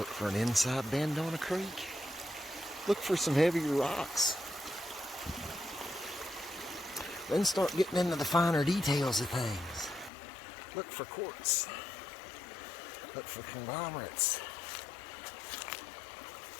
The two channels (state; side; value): drops out; right; at 10.1 s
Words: for an inside bend on a creek. Look for some heavier rocks. Then start getting into the finer details of things. Look for quartz. Look for conglomerates.